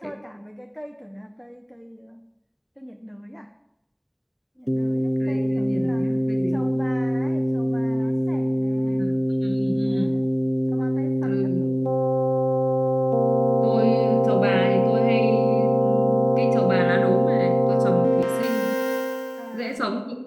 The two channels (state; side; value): identical; both; correlation 1.00